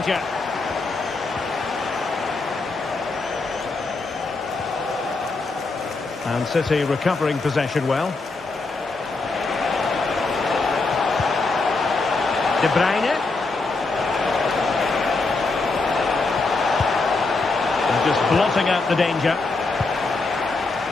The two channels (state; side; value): quieter; right; 3.7 dB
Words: And City recovering possession well. De Bruyne. And just blotting out the danger.